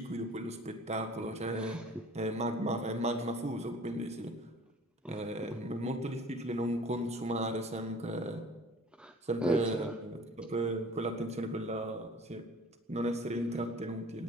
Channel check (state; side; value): normal; both; correlation 0.47